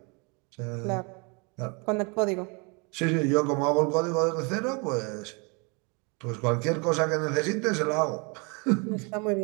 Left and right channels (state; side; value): quieter; left; 32.0 dB